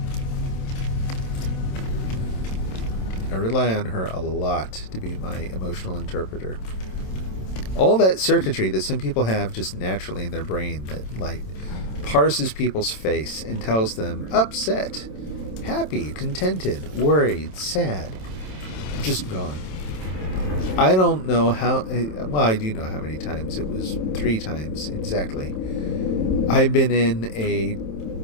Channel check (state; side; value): late; right; 27 ms